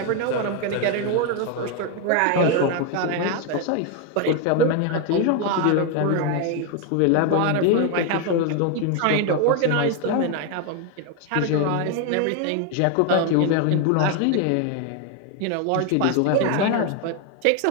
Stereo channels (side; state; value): both; different; correlation 0.01